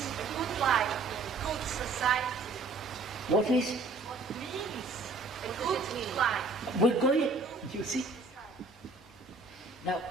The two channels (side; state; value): left; quieter; 3.7 dB